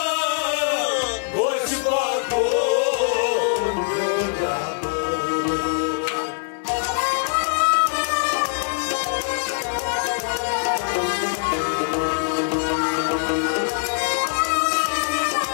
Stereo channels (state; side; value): silent; right; digital silence